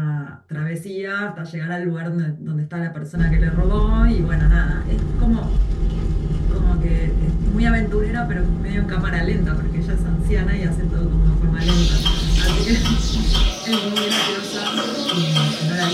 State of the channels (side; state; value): both; identical; correlation 1.00